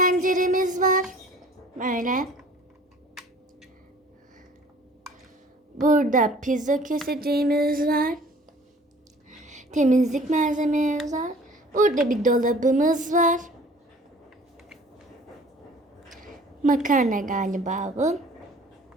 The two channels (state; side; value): normal; both; correlation 0.50